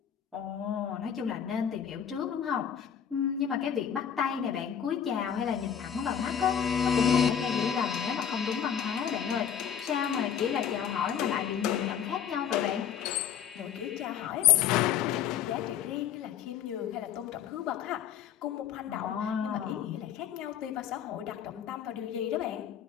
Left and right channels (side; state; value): right; quieter; 8.7 dB